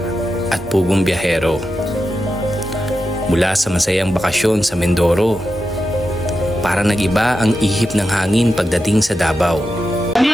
at Pugong Biyahero. Mula sa masayang bakasyon sa Mindoro, para nag-iba ang ihip ng hangin pagdating sa Davao.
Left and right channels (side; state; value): both; normal; correlation 0.89